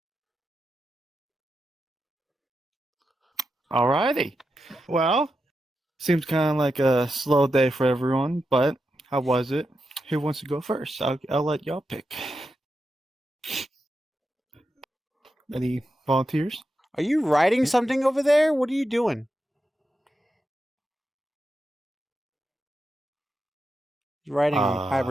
Alrighty. Well, seems kind of like a slow day for everyone, but how was it? Who wants to go first? I'll let y'all pick. Any volunteers? Are you writing something over there? What are you doing? You're writing on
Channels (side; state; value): both; normal; correlation 0.88